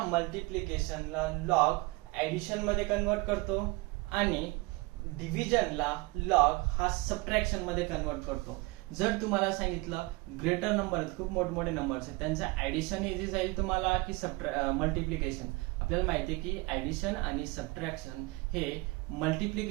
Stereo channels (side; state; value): left; quieter; 24.3 dB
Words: मल्टिप्लिकेशनला लॉग ऍडिशन मध्ये कन्वर्ट करतो आणि डिव्हिजनला लॉग हा सबट्रॅक्शन मध्ये कन्वर्ट करतो. जर तुम्हाला सांगितलं ग्रेटर नंबर आहेत, खूप मोठमोठे नंबर्स आहेत, त्यांचं ऍडिशन इझी जाईल तुम्हाला की मल्टिप्लिकेशन? आपल्याला माहिती आहे की ऍडिशन आणि सबट्रॅक्शन हे